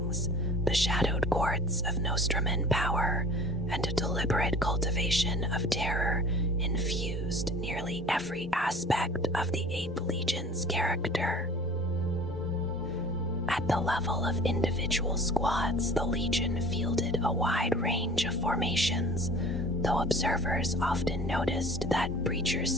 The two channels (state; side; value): normal; both; correlation 0.44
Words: the shadowed courts of Nostraman power, and a deliberate cultivation of terror infused nearly every aspect of the 8th Legion's character. At the level of individual squads, the Legion fielded a wide range of formations, though observers often noticed that Breacher